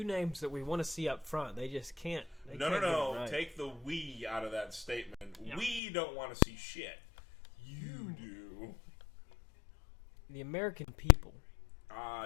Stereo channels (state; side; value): drops out; right; at 5.8 s